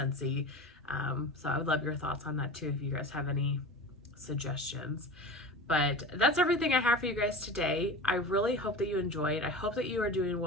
So I would love your thoughts on that too, if you guys have any suggestions. But that's everything I have for you guys today. I really hope that you enjoyed. I hope that you are doing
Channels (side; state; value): both; normal; correlation 0.32